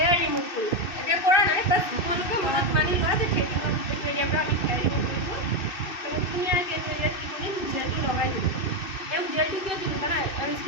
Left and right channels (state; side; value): late; right; 2.6 ms